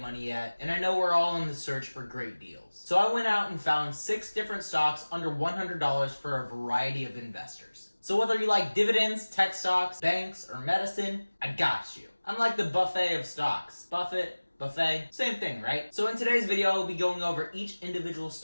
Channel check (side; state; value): both; inverted; correlation -1.00